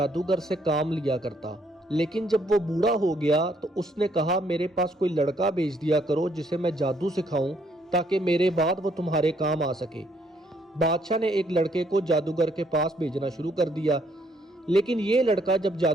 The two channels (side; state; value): both; normal; correlation 0.69